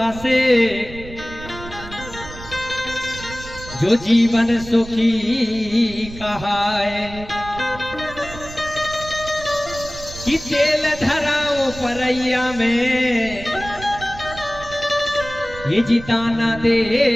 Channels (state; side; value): noise; right; rumble, 14 dB below the sound